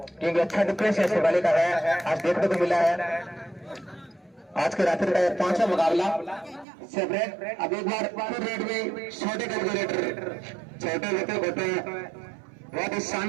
क्योंकि अच्छा डिफेंस है शिकराली का है। आज देखने को मिला है आज के रात्रि का 5वां मुकाबला सेपरेट। अब एक बार फिर रेड में छोटे कैलकुलेटर छोटे होते बहुत ही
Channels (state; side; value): drops out; left; at 6.7 s